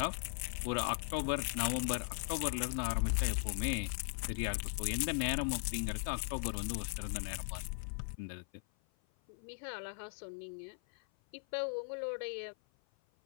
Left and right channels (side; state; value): right; silent; 52 dB below the other